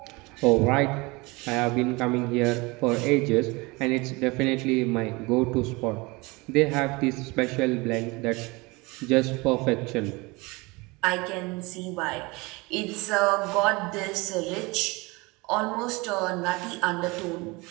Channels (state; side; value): quieter; left; 24.9 dB